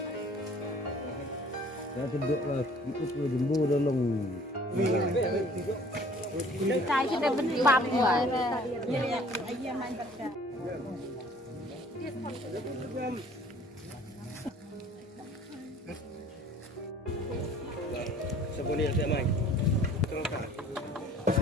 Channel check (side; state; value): both; normal; correlation 0.53